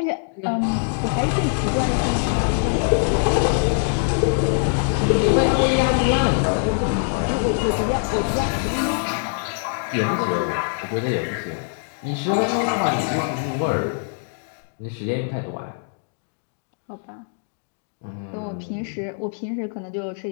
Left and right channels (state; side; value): silent; right; digital silence